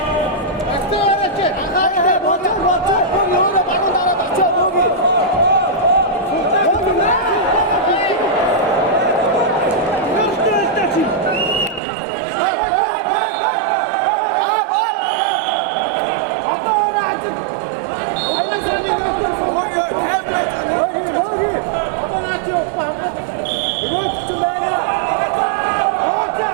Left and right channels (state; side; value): drops out; left; at 11.8 s